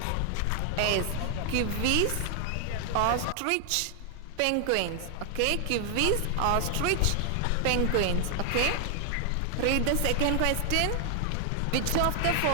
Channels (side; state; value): both; different; correlation 0.00